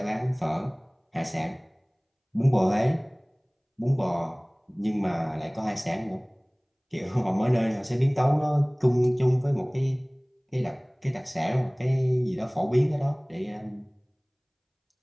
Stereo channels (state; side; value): identical; both; correlation 1.00